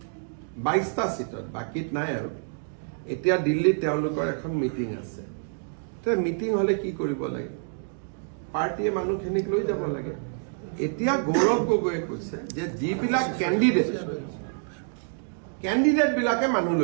22টা সিটত বাকিত নাই আৰু এতিয়া দিল্লীত তেওঁলোকৰ এখন মিটিং আছে তো মিটিং হলে কি কৰিব লাগে পাৰ্টিয়ে মানুহখিনিক লৈ যাব লাগে এতিয়া গৌৰৱ গগৈয়ে কৈছে যে যিবিলাক কেণ্ডিডেট বিলাকে মানুহ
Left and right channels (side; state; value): left; silent; digital silence